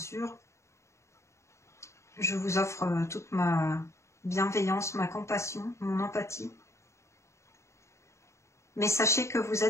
je vous offre toute ma bienveillance, ma compassion, mon empathie. Mais sachez que vous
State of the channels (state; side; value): late; right; 0.14 ms